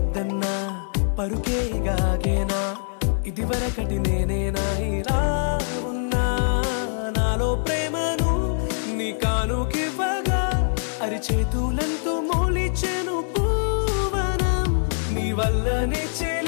పరుకేగాగేనా ఇదివరకటి నేనేనా ఇలా ఉన్నా నాలో ప్రేమను నీ కానుకివ్వగా అరిచేతులంతో మోలిచెను పూవనం నీ వల్లనే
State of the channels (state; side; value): silent; right; 60 dB below the other